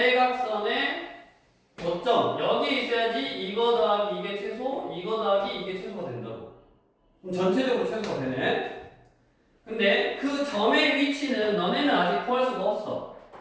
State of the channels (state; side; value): identical; both; correlation 1.00